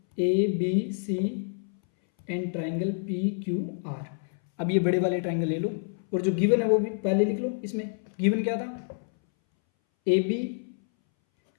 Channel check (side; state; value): right; silent; 60 dB below the other